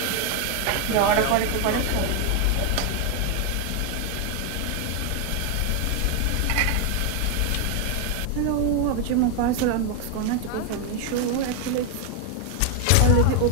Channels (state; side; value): different; both; correlation 0.01